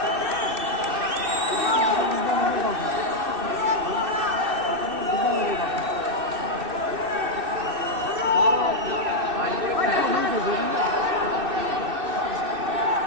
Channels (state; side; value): late; left; 2.6 ms